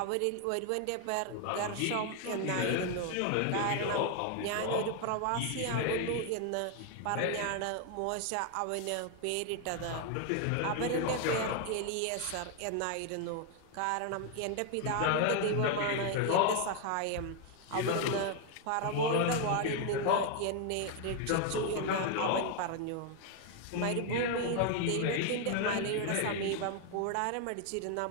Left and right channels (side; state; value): both; different; correlation 0.01